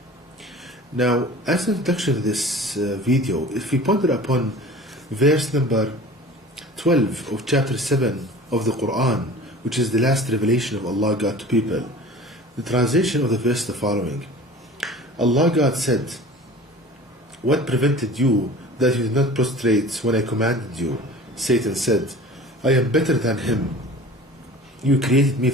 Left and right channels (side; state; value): both; normal; correlation 0.42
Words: Now, as an introduction to this video, if we ponder upon verse number 12 of chapter 7 of the Quran, which is the last revelation of Allah God to people, the translation of the verse is the following. Allah God said, "What prevented you that you did not prostrate when I commanded you?" Satan said, "I am better than him. You created me